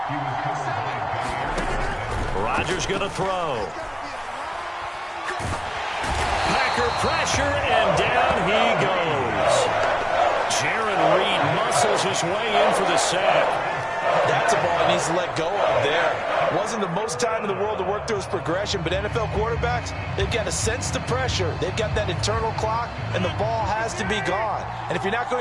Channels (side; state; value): both; identical; correlation 1.00